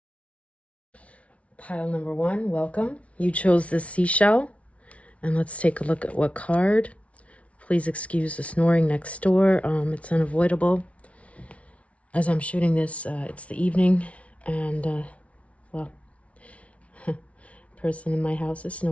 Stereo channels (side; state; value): right; late; 0.064 ms